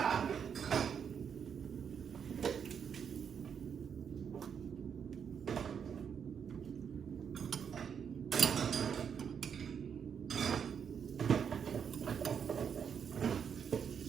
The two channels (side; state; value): left; quieter; 7.4 dB